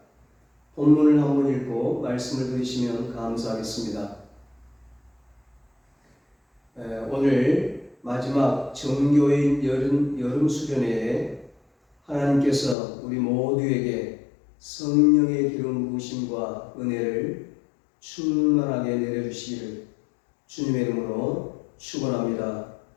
본문을 한번 읽고 말씀을 들으시면 감사하겠습니다. 오늘 마지막 정교인 여름 수련회에 하나님께서 우리 모두에게 성령의 기름 부으심과 은혜를 충만하게 내려주시기를 주님의 이름으로 축원합니다.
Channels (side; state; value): right; drops out; at 12.8 s